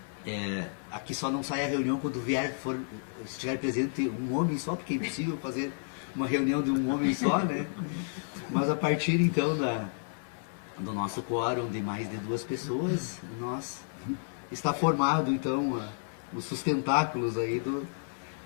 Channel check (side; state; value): right; silent; 57 dB below the other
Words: Aqui só não sai a reunião quando estiver presente um homem só, porque é impossível fazer uma reunião de um homem só, né? Mas a partir então do nosso quórum de mais de 2 pessoas, está formado então os sustentáculos aí